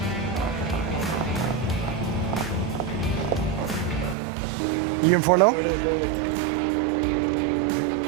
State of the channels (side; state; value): left; drops out; at 4.2 s